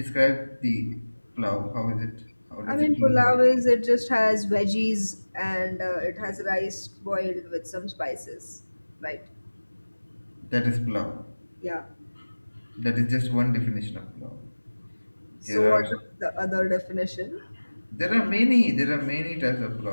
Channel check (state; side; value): inverted; both; correlation -1.00